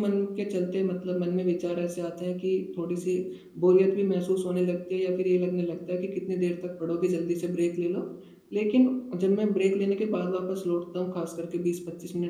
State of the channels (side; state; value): both; identical; correlation 1.00